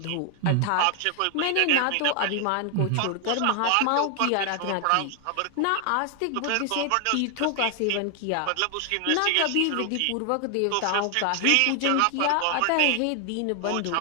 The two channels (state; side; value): different; both; correlation 0.00